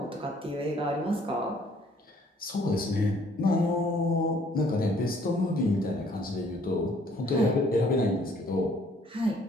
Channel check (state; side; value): normal; both; correlation 0.61